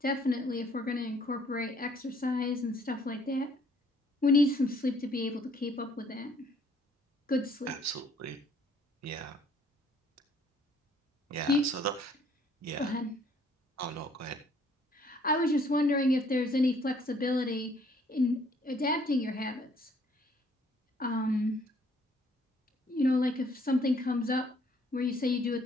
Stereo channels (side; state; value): both; normal; correlation 0.62